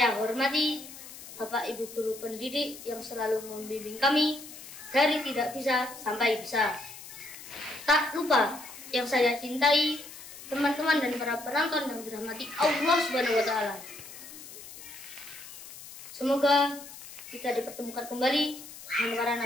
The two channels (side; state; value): left; noise; hiss, 15 dB below the sound